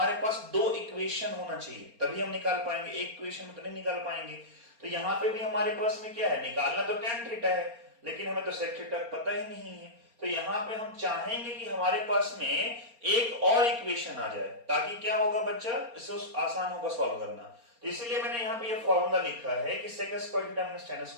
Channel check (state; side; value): late; left; 4.3 ms